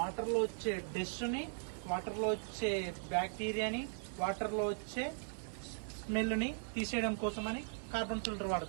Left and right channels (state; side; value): silent; left; 52 dB below the other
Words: లో వచ్చే డస్ట్ ని, వాటర్ లో వచ్చే బ్యాక్టీరియాని, వాటర్ లో వచ్చే స్మెల్ ని తీసేయడం కోసం అని కార్బన్ ఫిల్టర్